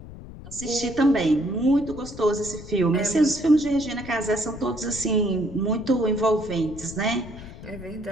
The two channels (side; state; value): left; noise; rumble, 14 dB below the sound